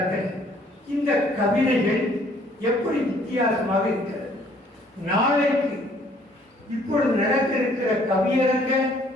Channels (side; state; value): both; normal; correlation 0.61